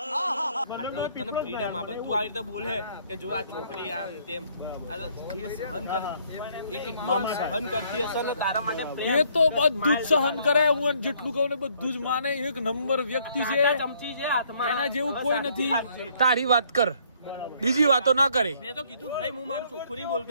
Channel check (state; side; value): inverted; both; correlation -0.65